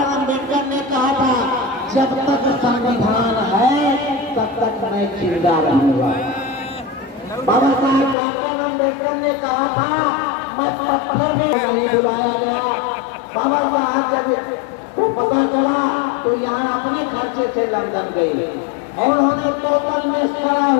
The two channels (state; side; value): drops out; right; at 8.2 s